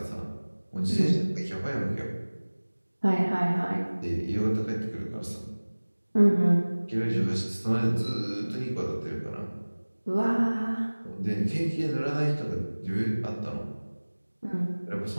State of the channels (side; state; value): both; inverted; correlation -1.00